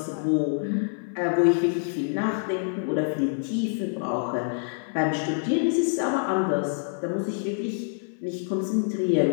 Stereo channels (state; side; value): silent; right; 61 dB below the other